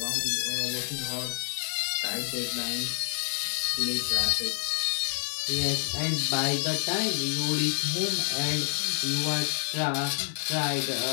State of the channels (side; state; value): right; silent; 59 dB below the other